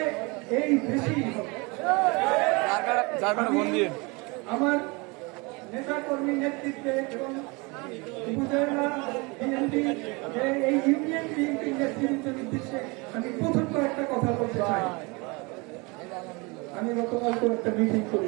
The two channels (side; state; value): left; quieter; 27.4 dB